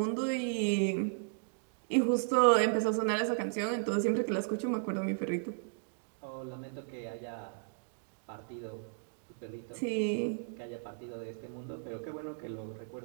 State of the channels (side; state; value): left; silent; digital silence